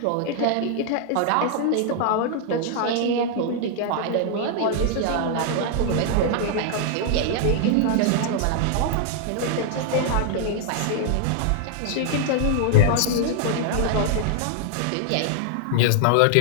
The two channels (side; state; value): both; different; correlation 0.00